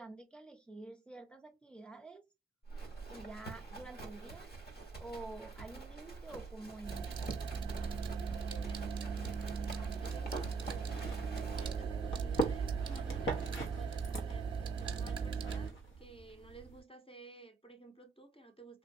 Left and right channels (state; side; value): quieter; left; 4.5 dB